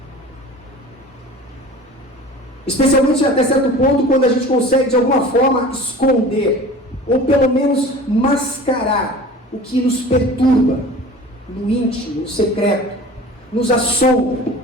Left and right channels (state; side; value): normal; both; correlation 0.40